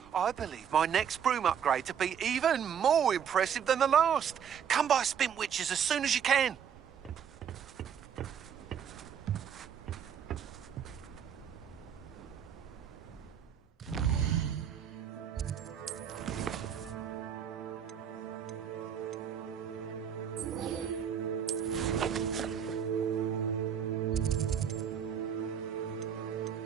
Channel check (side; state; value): left; quieter; 8.1 dB